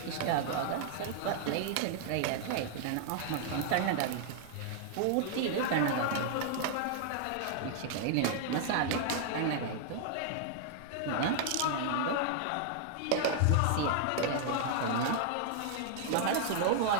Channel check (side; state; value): both; different; correlation 0.00